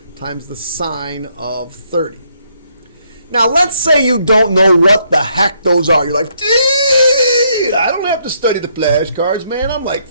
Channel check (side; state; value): both; inverted; correlation -0.72